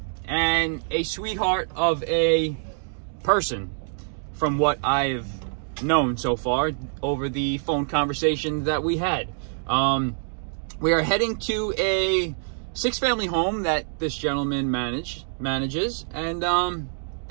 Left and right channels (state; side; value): silent; left; digital silence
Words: and a sweetheart of a person from what I've known so far over the phone conversation that we had. We are heading to a 6-family home that this gentleman manages, and